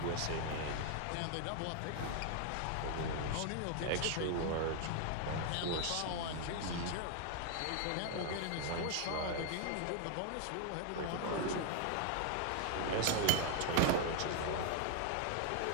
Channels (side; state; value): both; different; correlation 0.00